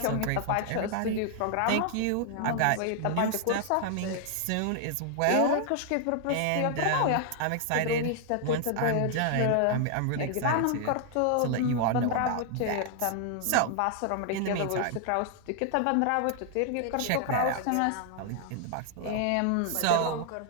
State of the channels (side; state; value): both; different; correlation 0.00